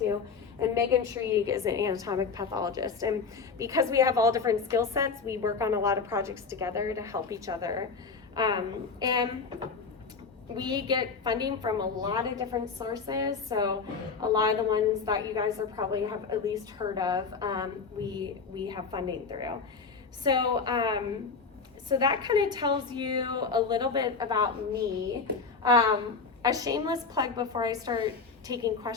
to. And Megan Shrieg is an anatomic pathologist. And because we have all different skill sets, we work on a lot of projects together to help each other. And we get funding from a lot of different sources. So a lot of the ones that you guys are probably have at least heard of, we have funding through. So, so that kind of tells you a little bit about me. A shameless plug before I start taking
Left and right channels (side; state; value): right; quieter; 4.9 dB